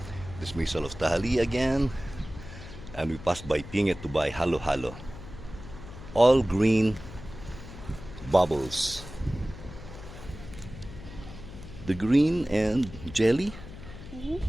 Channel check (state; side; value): noise; left; hum, 14 dB below the sound